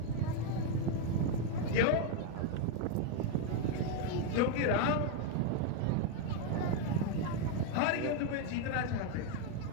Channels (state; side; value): different; both; correlation 0.01